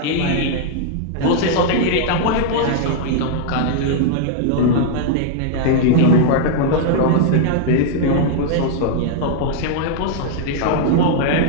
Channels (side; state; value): both; different; correlation -0.01